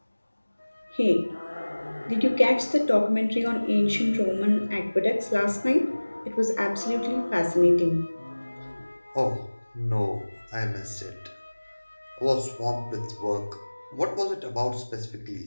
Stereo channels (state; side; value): inverted; both; correlation -1.00